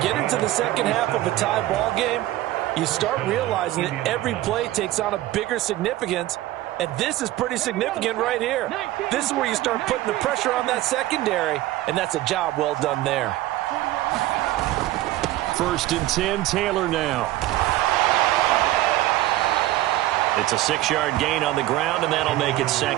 into the second half of a tie ball game, you start realizing that every play takes on a bigger significance. And this is pretty significant right here. This is where you start putting the pressure on that secondary, and that's a job well done there. First and 10, Taylor now. It's a 6-yard gain on the ground, and that'll make it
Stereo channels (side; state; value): left; quieter; 15.8 dB